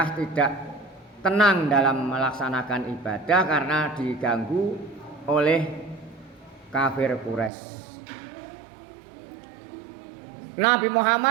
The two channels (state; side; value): drops out; left; at 7.5 s